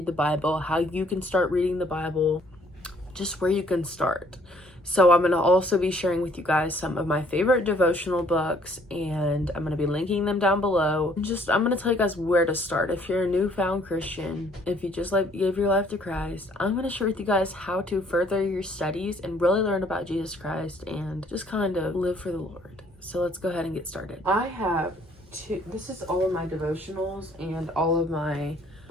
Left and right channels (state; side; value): normal; both; correlation 0.61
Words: the Bible, how you can start reading the Bible, just where you can start. So I'm going to also be sharing with you guys some of my favorite devotional books, and I'm going to be linking them down below. I'm going to tell you guys where to start. If you're a newfound Christian, if you just give your life to Christ, I'm going to share with you guys how to further your studies and really learn about Jesus Christ and just kind of live for the Lord. So let's go ahead and get started. I have this is all of my devotionals and all of my